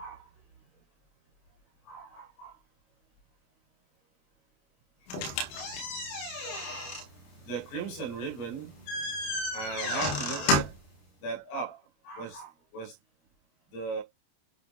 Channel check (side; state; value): right; late; 28 ms